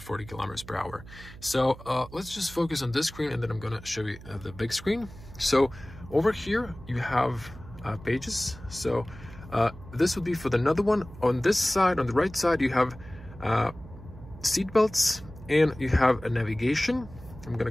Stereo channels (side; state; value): right; noise; hum, 17 dB below the sound